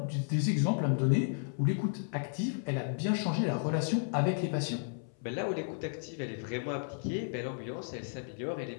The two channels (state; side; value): silent; right; 56 dB below the other